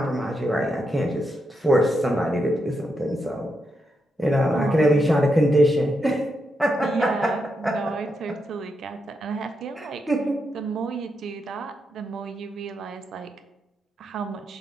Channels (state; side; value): normal; both; correlation 0.83